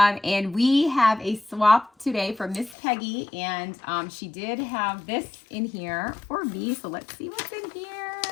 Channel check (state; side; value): drops out; right; at 2.8 s